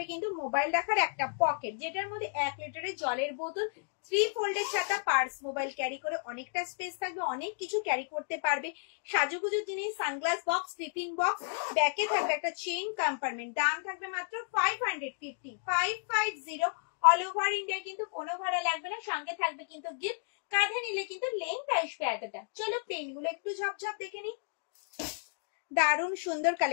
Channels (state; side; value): silent; right; digital silence